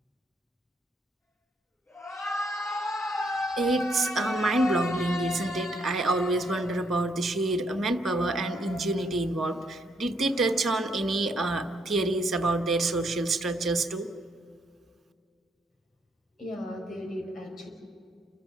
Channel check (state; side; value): normal; both; correlation 0.73